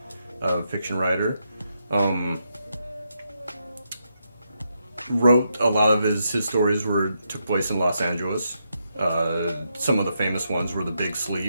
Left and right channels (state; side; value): inverted; both; correlation -0.82